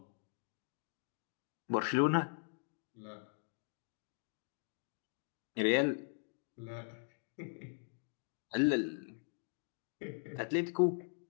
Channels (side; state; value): right; silent; digital silence